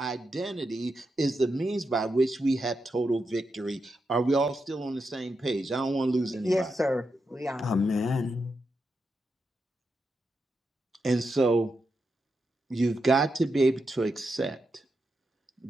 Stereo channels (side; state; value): both; normal; correlation 0.86